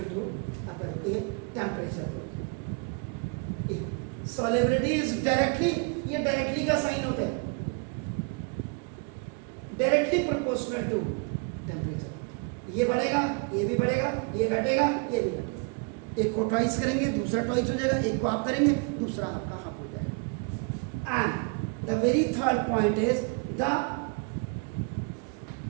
to upper temperature. Solubility is directly, ये डायरेक्टली का साइन होता है, डायरेक्टली प्रोपोर्शनल टू टेम्परेचर. ये बढ़ेगा, ये भी बढ़ेगा, ये घटेगा, ये भी घटेगा. एक को ट्वाइस करेंगे दूसरा ट्वाइस हो जाएगा, एक को आप करेंगे दूसरा आपका हाफ हो जाएगा. And the very third point is the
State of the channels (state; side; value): quieter; left; 35.9 dB